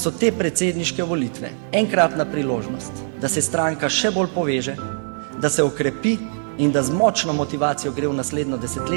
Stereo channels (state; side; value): silent; left; 64 dB below the other